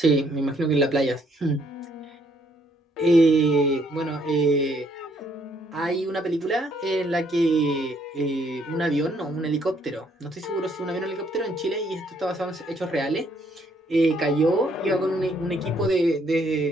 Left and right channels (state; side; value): normal; both; correlation 0.68